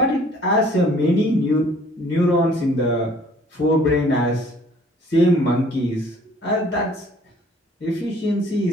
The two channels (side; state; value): both; normal; correlation 0.56